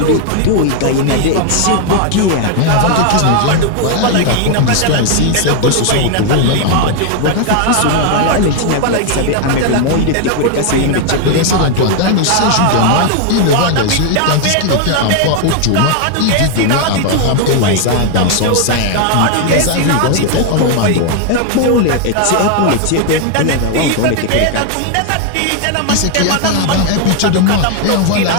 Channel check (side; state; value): both; different; correlation 0.00